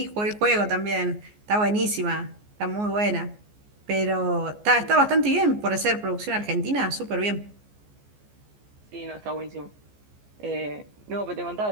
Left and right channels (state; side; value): late; left; 14 ms